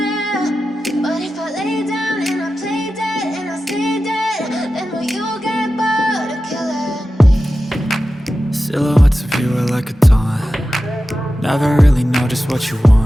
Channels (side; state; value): both; normal; correlation 0.93